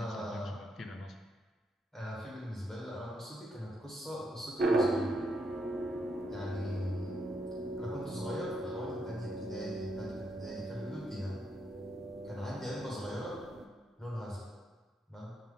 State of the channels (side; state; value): both; normal; correlation 0.79